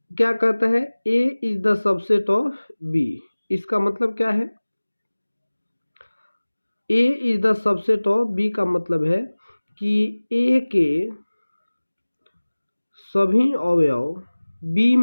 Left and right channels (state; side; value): inverted; both; correlation -1.00